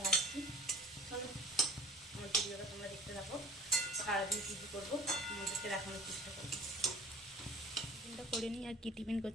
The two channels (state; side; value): normal; both; correlation 0.46